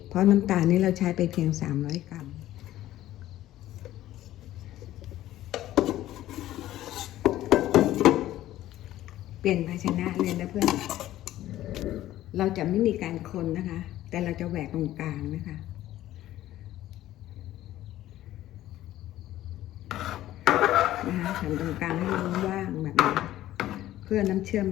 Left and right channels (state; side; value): quieter; right; 14.1 dB